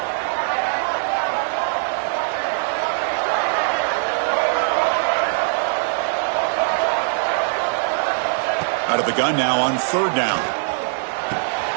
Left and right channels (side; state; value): left; silent; digital silence